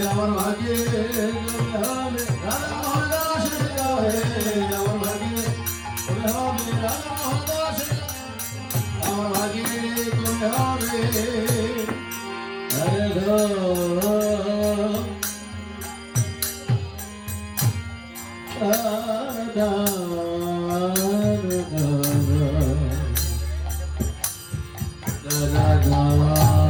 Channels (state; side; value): identical; both; correlation 1.00